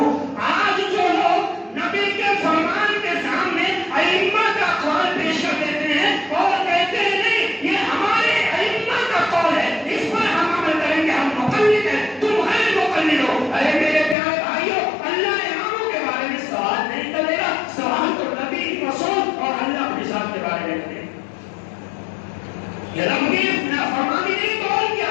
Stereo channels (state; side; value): drops out; right; at 14.2 s